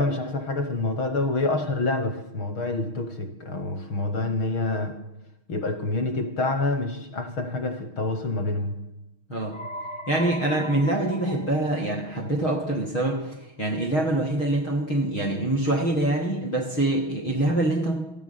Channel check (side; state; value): right; late; 6.4 ms